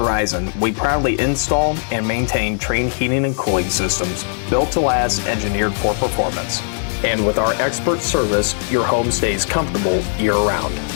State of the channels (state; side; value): silent; right; 67 dB below the other